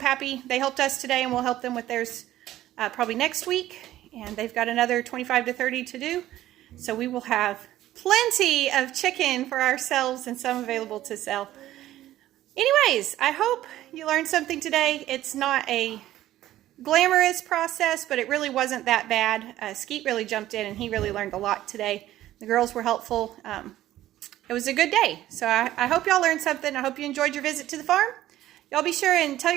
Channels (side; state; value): left; quieter; 14.0 dB